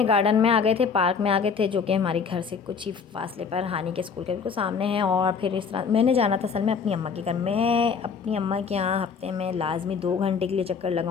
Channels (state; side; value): quieter; right; 5.9 dB